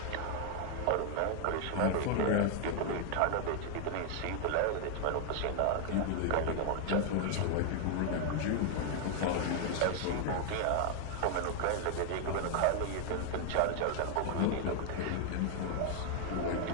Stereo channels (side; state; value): both; different; correlation 0.00